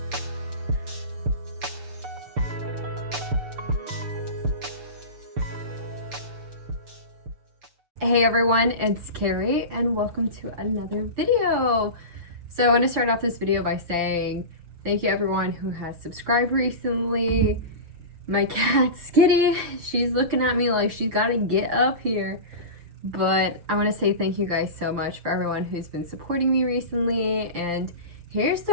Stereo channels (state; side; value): late; left; 6.7 ms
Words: Hey everyone, it's Carrie and welcome to another video. So I want to start off this video by saying thank you everyone who has subscribed recently. My cat Skitty, she's looking at me like she's got to get up here. But I want to say thank you guys so much for everyone who's been supporting me recently, and here's